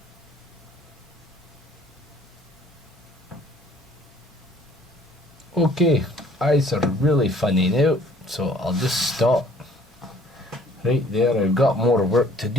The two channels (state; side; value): normal; both; correlation 0.57